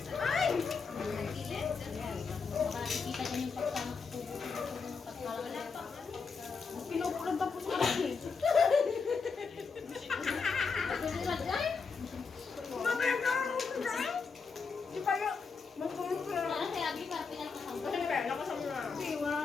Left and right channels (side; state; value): right; quieter; 5.1 dB